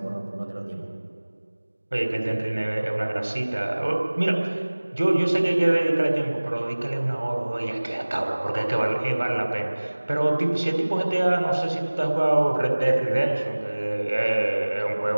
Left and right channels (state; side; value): inverted; both; correlation -1.00